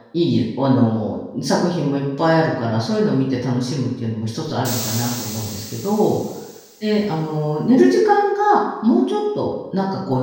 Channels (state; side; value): identical; both; correlation 1.00